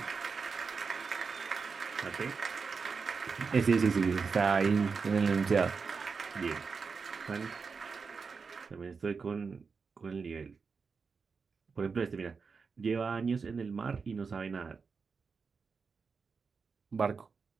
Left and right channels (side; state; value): left; quieter; 5.1 dB